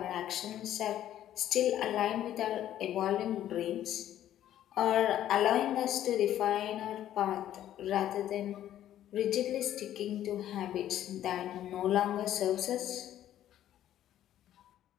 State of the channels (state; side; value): quieter; right; 11.9 dB